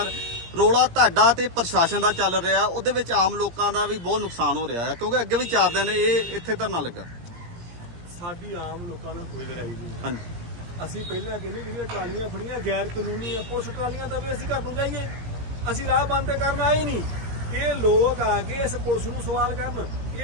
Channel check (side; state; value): left; late; 17 ms